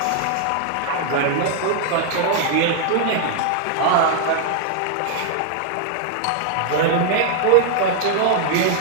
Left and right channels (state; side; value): different; both; correlation 0.00